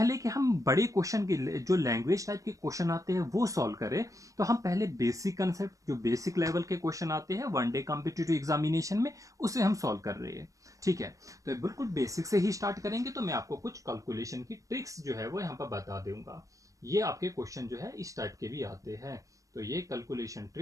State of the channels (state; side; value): late; left; 0.16 ms